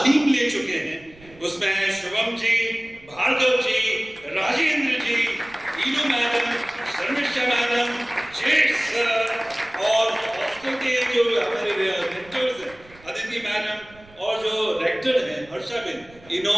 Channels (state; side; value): noise; right; rumble, 25 dB below the sound